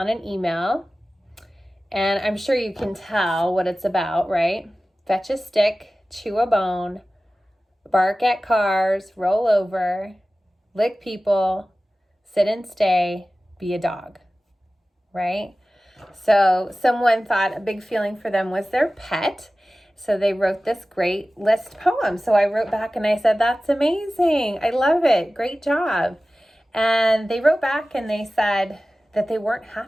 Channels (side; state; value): both; normal; correlation 0.96